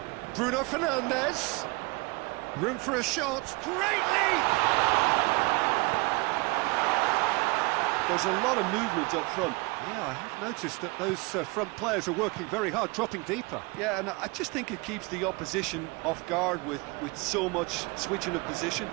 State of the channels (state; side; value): quieter; left; 26.9 dB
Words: Bruno Fernandes. Room for a shot. Great leap! There's a lot of movement up front. Yeah, I have noticed that those front players are working very hard, dropping deeper. Yeah, and I just think it keeps the opposition off guard with so much switching of position.